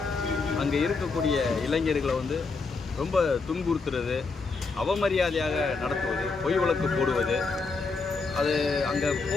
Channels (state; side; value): quieter; right; 4.3 dB